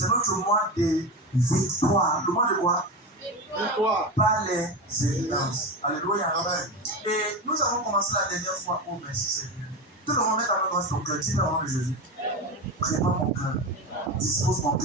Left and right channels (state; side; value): normal; both; correlation 0.21